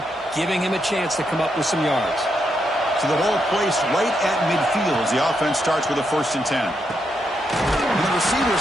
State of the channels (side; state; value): both; normal; correlation 0.81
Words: giving him a chance to come up with some yards. So the ball placed right at midfield as the offense starts with a 1st and 10. And the receivers